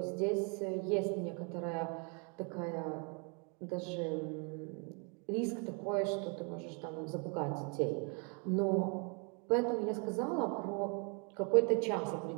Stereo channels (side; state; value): left; quieter; 36.1 dB